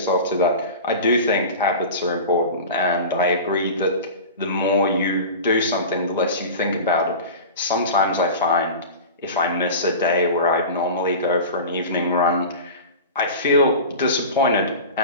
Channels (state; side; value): inverted; both; correlation -0.33